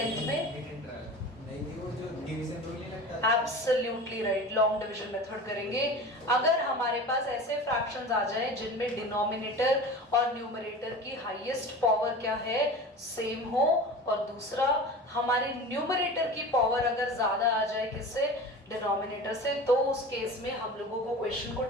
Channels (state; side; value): normal; both; correlation 0.35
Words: में absolutely right, long division method करेंगे। अगर हमारे पास ऐसे फ्रैक्शंस आ जाए जिनमें डिनोमिनेटर और न्यूमरेटर की हाईएस्ट पावर क्या है, सेम हो, और दूसरा हमारे न्यूमरेटर की पावर अगर ज्यादा आ जाए किससे, डिनोमिनेटर से, तो उस केस में हम लोगों को क्वेश्चन को